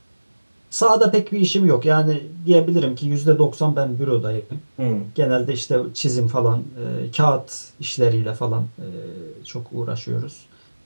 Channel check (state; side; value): inverted; both; correlation -1.00